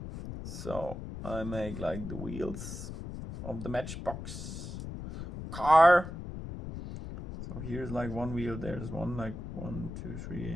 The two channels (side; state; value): left; noise; rumble, 8 dB below the sound